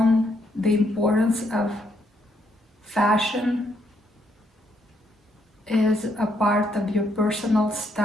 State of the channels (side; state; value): both; normal; correlation 0.74